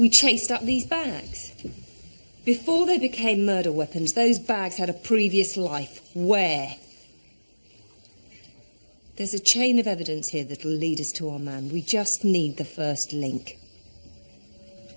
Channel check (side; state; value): both; inverted; correlation -1.00